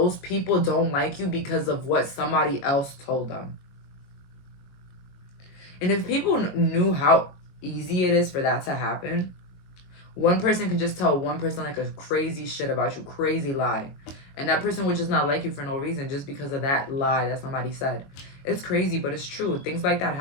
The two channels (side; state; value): right; late; 22 ms